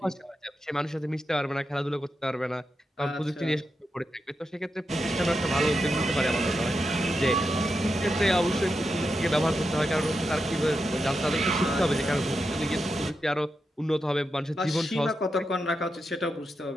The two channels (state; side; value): normal; both; correlation 0.87